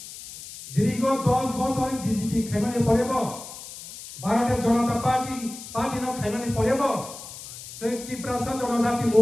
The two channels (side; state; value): left; noise; hiss, 13 dB below the sound